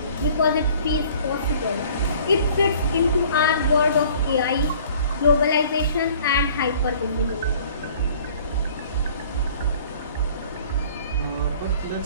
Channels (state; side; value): inverted; both; correlation -0.52